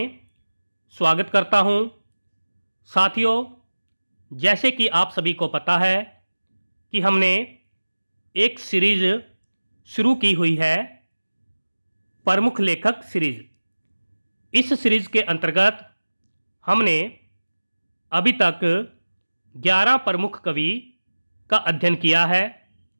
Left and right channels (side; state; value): both; inverted; correlation -1.00